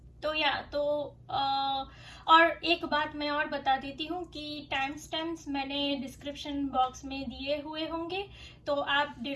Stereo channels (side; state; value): both; identical; correlation 1.00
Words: और एक बात मैं और बता देती हूँ कि टाइम स्टैम्प्स मैंने डिस्क्रिप्शन बॉक्स में दिए हुए होंगे, तो आप